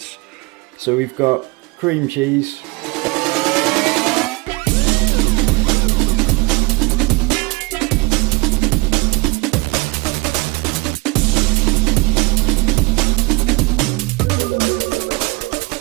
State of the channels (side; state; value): left; quieter; 24.7 dB